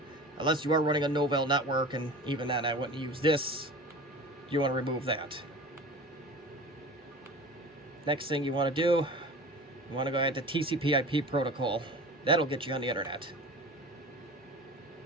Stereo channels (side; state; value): both; normal; correlation 0.37